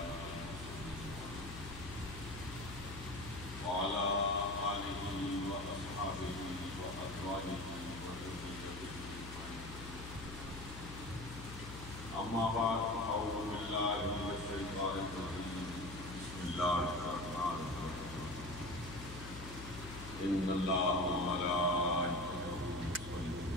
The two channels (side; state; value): left; noise; hum, 11 dB below the sound